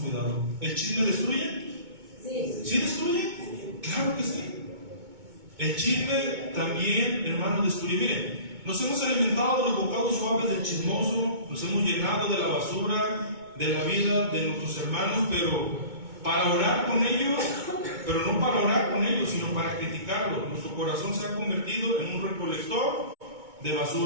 ¿El chisme destruye? ¿Sí destruye? Claro que sí. El chisme también, hermano, destruye. Miren, nos hemos alimentado de los bocados suaves del chismoso, nos hemos llenado de la basura de la vida de nuestros hermanos, pero para orar con ellos, pero no para orar con ellos, sino para criticarlos. Nuestro corazón se ha convertido en un recolector de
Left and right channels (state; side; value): late; left; 2.2 ms